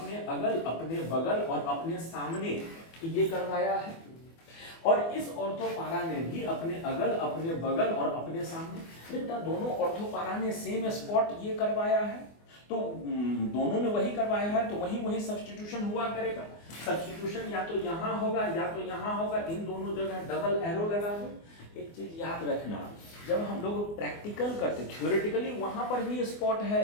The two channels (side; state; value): right; late; 24 ms